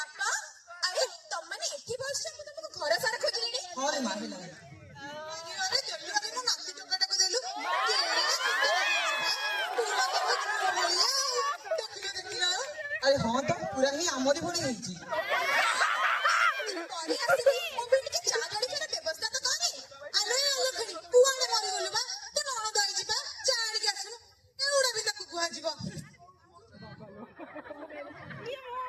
अरे तुम माने एठी बस मु तुमको घर सारा खोजलिनी हां रे मां हेला अरे जल्दी अरे मु नाती टोकाटा को देलु अरे हाँ तो पूरा ही आमरी भड़ी ହେଇଛି तोरी आसी मो बेटी के चा गाड़ी के व्यवस्था तो करी अरे अलखणी तू आने मरी गलु बा तो नण दई जिबा चा गाड़ी के आसनु एउडा भी ताकू गुहा जिवो ये मो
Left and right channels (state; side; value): identical; both; correlation 1.00